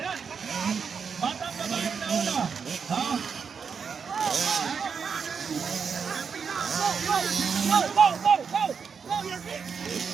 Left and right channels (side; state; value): left; quieter; 6.2 dB